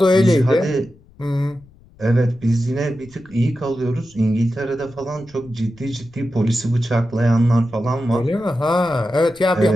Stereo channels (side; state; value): left; noise; rumble, 27 dB below the sound